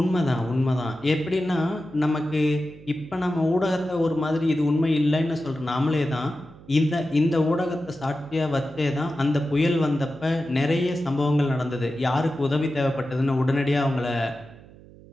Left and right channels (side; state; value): right; noise; hum, 21 dB below the sound